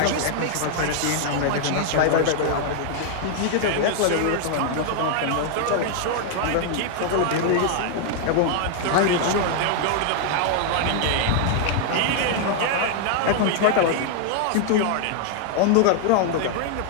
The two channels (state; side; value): different; both; correlation 0.00